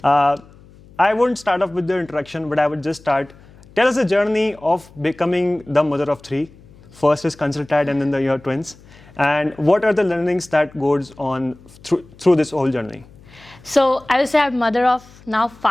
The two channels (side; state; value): left; noise; hum, 24 dB below the sound